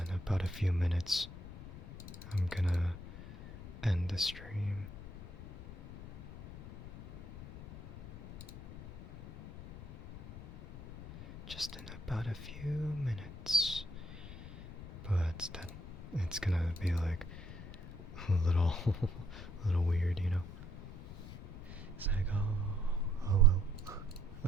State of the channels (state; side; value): noise; left; rumble, 12 dB below the sound